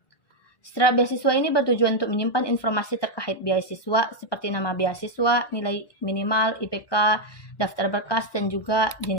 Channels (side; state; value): right; late; 1.2 ms